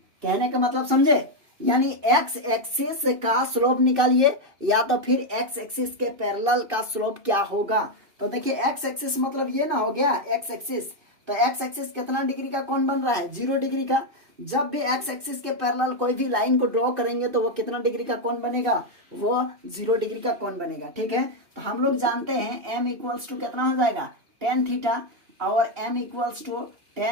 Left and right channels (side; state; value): left; late; 2.6 ms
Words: कहने का मतलब समझे, यानी x एक्सिस का स्लोप निकालिए या तो फिर x एक्सिस के पैरेलल का स्लोप क्या होगा। तो देखिए x एक्सिस मतलब ये ना हो गया x एक्सिस, तो x एक्सिस कितना डिग्री का कोण बन रहा है 0 डिग्री का। जब भी x एक्सिस के पैरेलल कोई भी लाइन को ड्रॉ करेंगे तो वो कितना डिग्री का कोण बनेगा, वो 0 डिग्री का कोण बनेगा। ठीक है, तो हम लोग जानते हैं m इक्वल्स टू कितना हो जाएगा tan थीटा, और m equals to